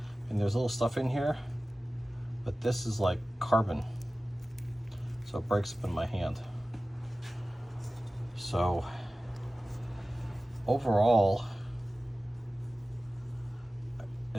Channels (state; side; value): normal; both; correlation 0.96